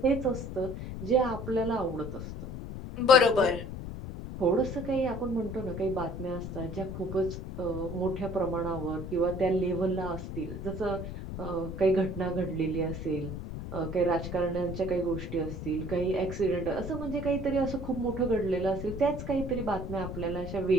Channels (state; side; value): noise; left; rumble, 7 dB below the sound